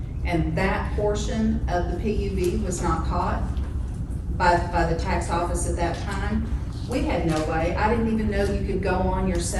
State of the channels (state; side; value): identical; both; correlation 1.00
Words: and that portion of the PUV was not caught by the tax office at that time, we had no way, I didn't even know you could go on